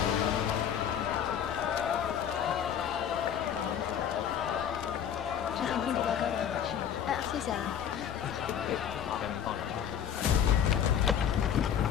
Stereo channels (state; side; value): quieter; right; 8.9 dB